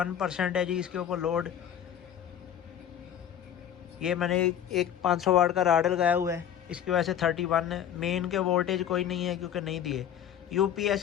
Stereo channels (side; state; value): right; quieter; 9.8 dB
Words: है जी इसके ऊपर लोड। ये मैंने एक 500 वाट का राड लगाया हुआ है, इसकी वजह से 31 है। मेन के वोल्टेज कोई नहीं है क्योंकि नहीं दिए।